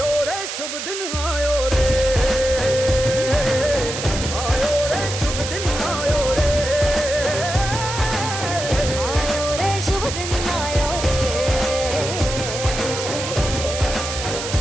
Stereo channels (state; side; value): noise; right; hiss, 6 dB below the sound